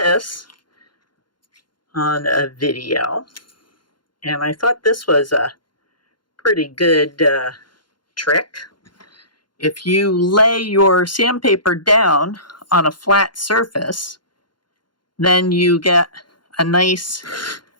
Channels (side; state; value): right; late; 0.71 ms